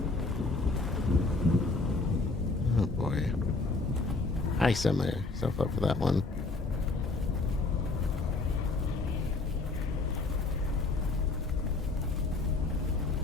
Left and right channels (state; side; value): quieter; right; 3.6 dB